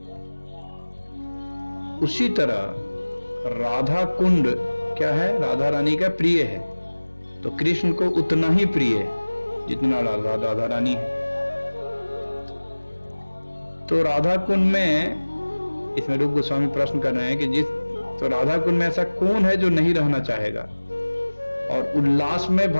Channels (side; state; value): both; inverted; correlation -1.00